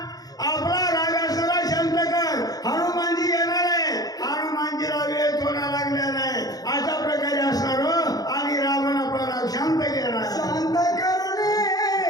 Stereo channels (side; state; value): right; late; 0.18 ms